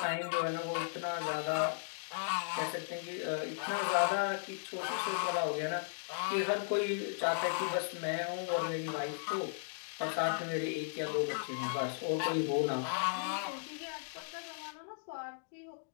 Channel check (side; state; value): right; silent; digital silence